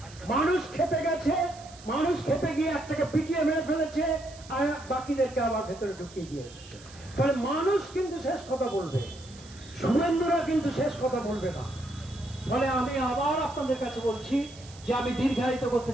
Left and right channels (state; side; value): noise; right; hiss, 20 dB below the sound